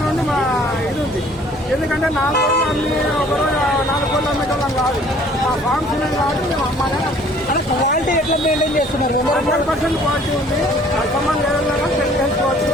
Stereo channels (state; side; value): normal; both; correlation 0.55